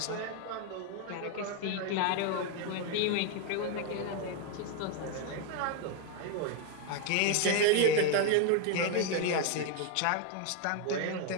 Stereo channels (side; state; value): both; different; correlation 0.01